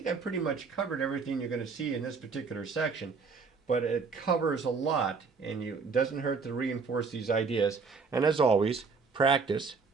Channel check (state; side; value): quieter; left; 4.9 dB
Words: I pretty much covered everything you're going to see in this particular section, but it covers a lot, and it doesn't hurt to reinforce these ideas. And as always, practice,